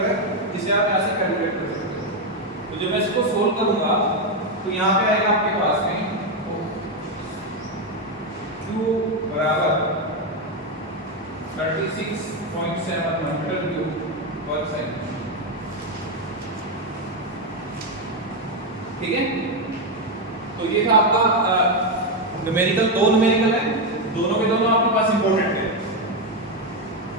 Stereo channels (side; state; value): both; normal; correlation 0.06